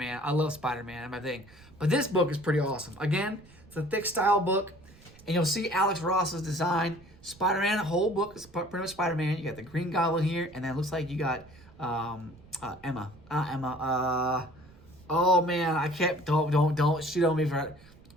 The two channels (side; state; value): right; noise; rumble, 24 dB below the sound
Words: I love Spider-Man and my thing. But this book is pretty awesome. Again, it's a thick style book. And you'll see Alex Ross's design. Spider-Man, the whole book is pretty much Spider-Man. You got the Green Goblin here. And then it looks like you got Emma. Oh man, I can't. Don't shoot on me for.